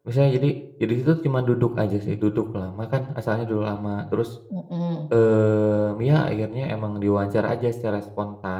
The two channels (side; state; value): both; identical; correlation 1.00